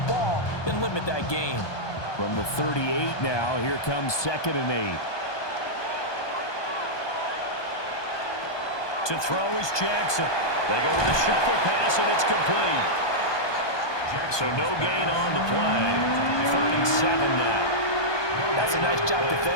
ball and limit that gain. From the 38 now, here comes 2nd and 8. To throw is Jackson. They go with a shuffle pass, and it's complete. So no gain on the play. 3rd and 7 now. That's a nice job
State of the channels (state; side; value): late; right; 1.2 ms